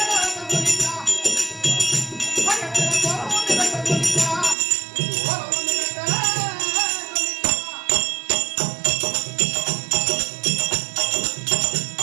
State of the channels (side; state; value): left; drops out; at 4.5 s